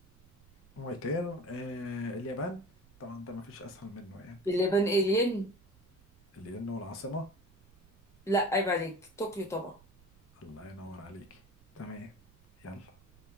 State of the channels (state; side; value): noise; right; rumble, 27 dB below the sound